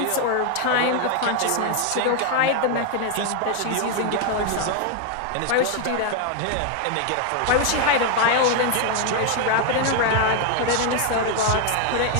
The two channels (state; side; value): different; both; correlation 0.00